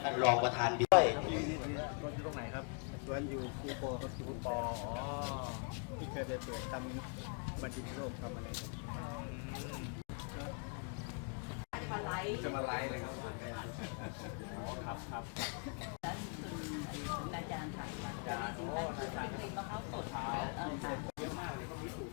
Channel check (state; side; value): quieter; right; 38.7 dB